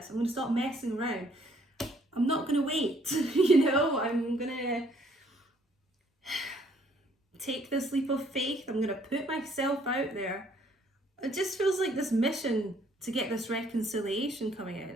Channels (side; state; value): both; normal; correlation 0.64